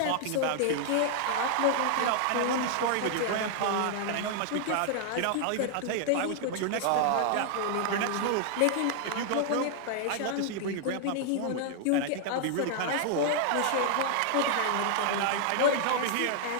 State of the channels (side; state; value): both; different; correlation 0.00